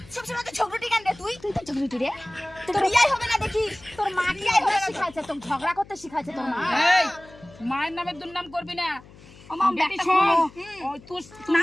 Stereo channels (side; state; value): left; noise; hum, 22 dB below the sound